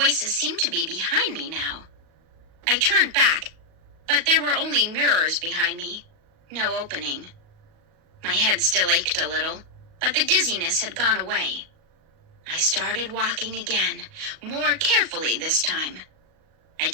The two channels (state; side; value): late; left; 38 ms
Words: seemed to be behind me now. I turned back, but there were only mirrors behind me, no opening. My head still ached a little, but the dizziness had gone away. I started walking again, more carefully this time. I